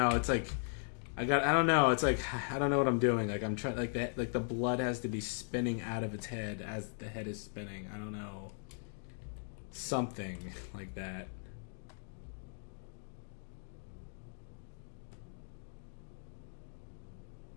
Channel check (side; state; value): right; silent; digital silence